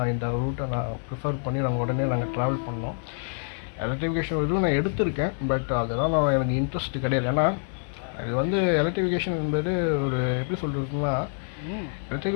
இந்த ரூட்டை நான் ப்ரிஃபர் பண்ணி நாங்கள் ட்ராவல் பண்ணோம். எலக்ட்ரிஃபிகேஷன் இதுவும் நான் எடுத்திருக்கேன். பட் அதெல்லாம் எனக்கு இன்ட்ரெஸ்ட் கிடையாது. ஏன்னா இது எலக்ட்ரிஃபிகேஷன் என்பது ஒரு எப்படி சொல்கிறதுன்னா,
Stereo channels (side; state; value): right; silent; digital silence